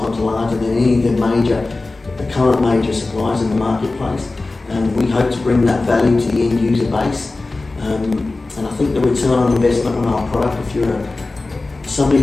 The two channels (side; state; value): right; quieter; 3.3 dB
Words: larger than any of the current major suppliers in the marketplace. And we hope to bring that value to the end user base. And I think the return on investment on our product, if you're